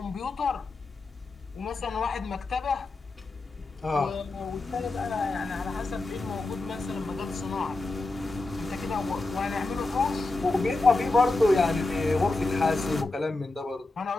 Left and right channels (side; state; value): right; quieter; 3.2 dB